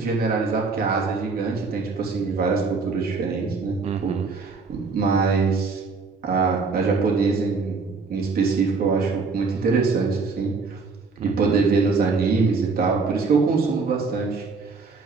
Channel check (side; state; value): left; quieter; 4.4 dB